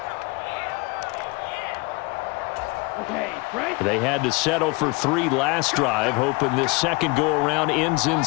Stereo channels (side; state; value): right; quieter; 26.0 dB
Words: They had to settle for 3 last drive, hoping this second go-around ends in